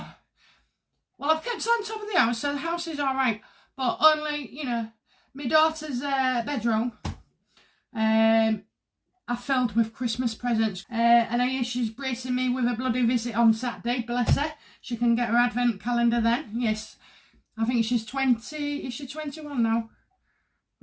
I've kept on top of the house, so the house is all right. But only, you know, my daughter's bedroom I filled with Christmas presents. And I hear she's bracing me with a bloody visit on Saturday, bless her. She can get her advent calendar then. Yes, I think she's 20. Is she 21 now?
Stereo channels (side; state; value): both; identical; correlation 1.00